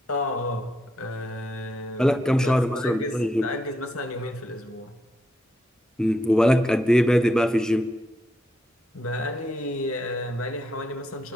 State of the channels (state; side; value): normal; both; correlation 0.81